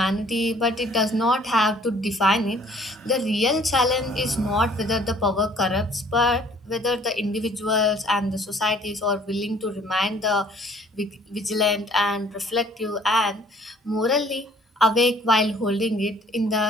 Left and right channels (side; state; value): both; normal; correlation 0.56